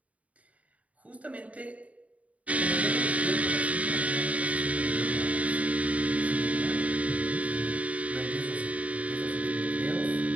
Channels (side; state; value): left; late; 0.068 ms